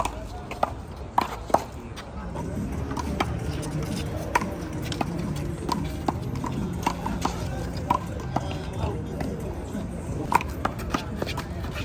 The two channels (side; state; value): both; identical; correlation 1.00